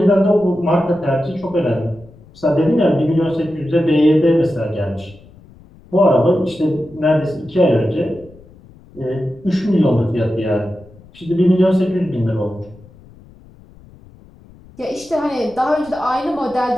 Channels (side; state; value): left; noise; rumble, 24 dB below the sound